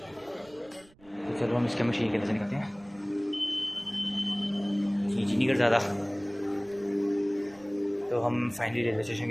तो चलो हम इसके मशीन के अंदर से निकलते हैं। खींची नहीं कर ज़्यादा। तो हम फाइनली रेलवे स्टेशन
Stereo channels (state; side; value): noise; right; rumble, 29 dB below the sound